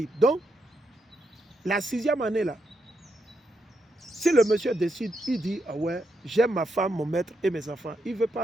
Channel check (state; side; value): normal; both; correlation 0.81